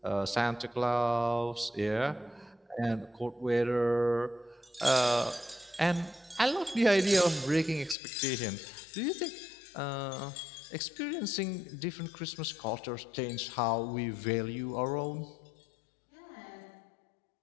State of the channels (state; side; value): drops out; right; at 8.0 s